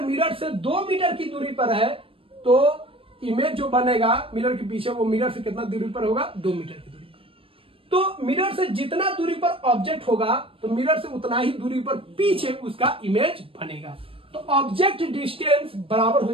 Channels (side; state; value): left; late; 0.26 ms